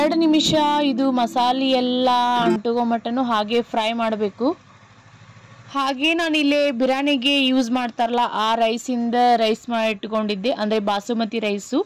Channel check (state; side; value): identical; both; correlation 1.00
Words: ನಿಮಿಷ ಇದು ಮಸಾಲೆ ಎಲ್ಲ ಅಂಟುಗೋ ಮಟ್ಟನೂ ಹಾಗೆ ಫ್ರೈ ಮಾಡಬೇಕು. ಹಾಗೆ ನಾನಿಲ್ಲೇ ಬಿರಿಯಾನಿಗೆ ಯೂಸ್ ಮಾಡ್ತಾರಲ್ಲ ಆ ರೈಸಿಂದ ರೈಸ್ ಮಾಡಿ ಇಟ್ಕೊಂಡಿದ್ದೆ, ಅಂದರೆ ಬಾಸುಮತಿ ರೈಸು.